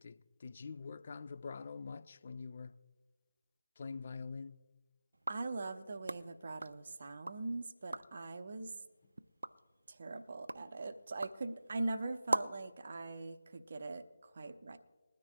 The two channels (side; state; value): both; inverted; correlation -0.94